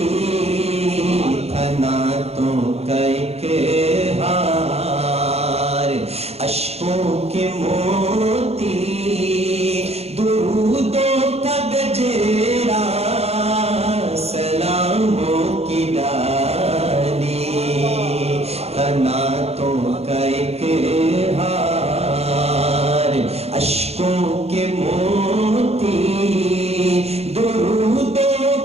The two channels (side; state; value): left; late; 0.30 ms